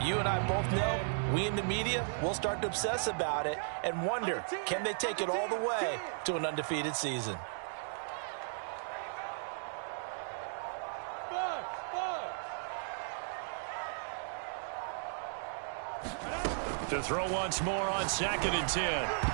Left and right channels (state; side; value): silent; left; digital silence